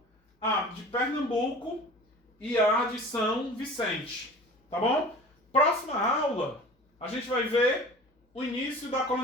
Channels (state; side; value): normal; both; correlation 0.41